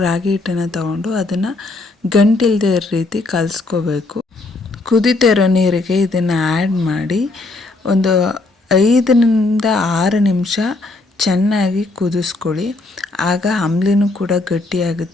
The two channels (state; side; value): quieter; right; 3.2 dB